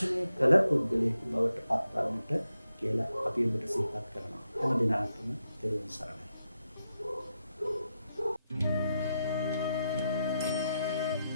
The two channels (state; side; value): inverted; both; correlation -0.85